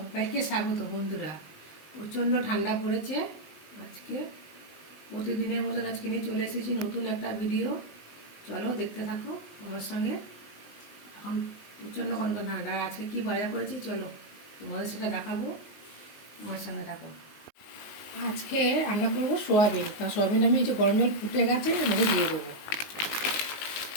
স্বাগত। বন্ধুরা, প্রচণ্ড ঠান্ডা পড়েছে। আজকে প্রতিদিনের মতন আজকে নিয়ে চলে এসেছি নতুন একটা ভিডিও। চলো দেখতে থাকো আমার সঙ্গে। এখন প্রচণ্ড কনকন ঠান্ডা। আজকে কী বাজার করেছি চলো তোমাদের সেটা দেখাবো, আমার সঙ্গে থাকো। আজকে রান্না করবো সোয়াবিন। তা সোয়াবিনটা আমি এই যে গরম জল ফুটে গেছে মধ্যে দিয়ে দেবো।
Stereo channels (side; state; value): right; late; 19 ms